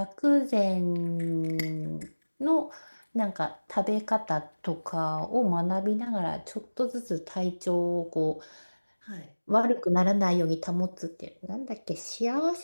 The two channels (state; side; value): inverted; both; correlation -1.00